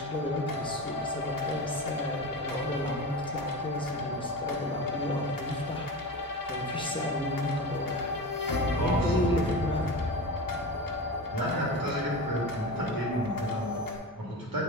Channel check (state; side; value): normal; both; correlation 0.27